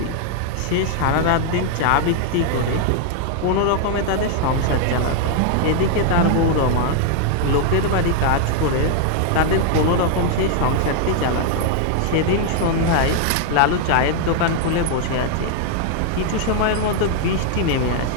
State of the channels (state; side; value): different; both; correlation 0.00